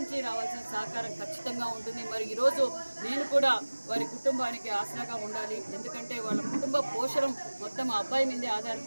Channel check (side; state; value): both; inverted; correlation -1.00